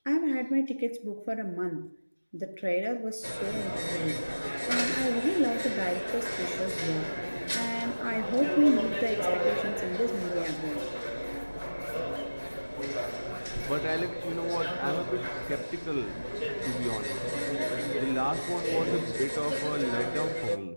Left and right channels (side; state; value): both; inverted; correlation -1.00